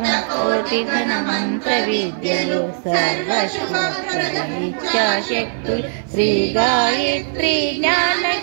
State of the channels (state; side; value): silent; left; 55 dB below the other